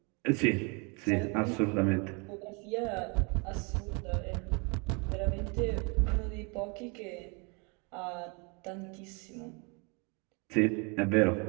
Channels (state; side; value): quieter; left; 32.3 dB